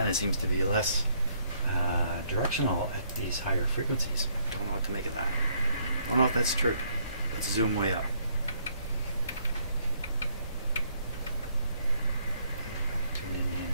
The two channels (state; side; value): inverted; both; correlation -0.68